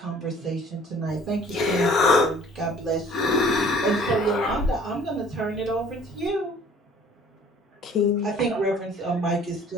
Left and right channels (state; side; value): normal; both; correlation 0.52